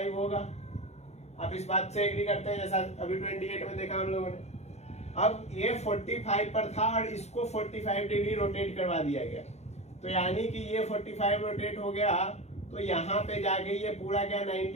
होगा? आप इस बात से एग्री करते हैं? जैसा अभी 28 में देखा हम लोगों ने। अब ये 45 पर था और इसको 45 डिग्री रोटेट करवा दिया गया, तो यानी कि ये 45 रोटेट हो गया, तो यहाँ पे जाके ये पूरा क्या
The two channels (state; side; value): late; right; 0.32 ms